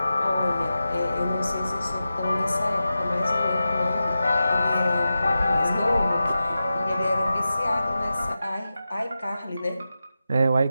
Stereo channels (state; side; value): inverted; both; correlation -0.92